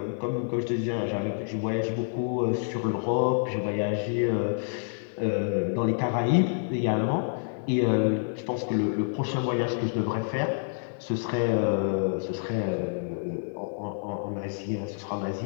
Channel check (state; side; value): silent; right; 59 dB below the other